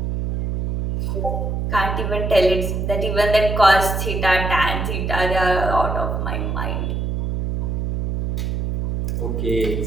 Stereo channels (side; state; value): right; noise; hum, 2 dB below the sound